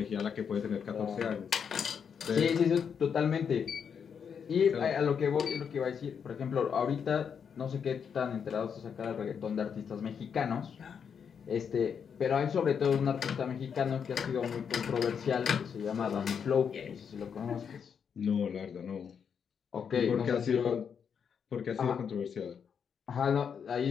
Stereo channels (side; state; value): right; quieter; 7.1 dB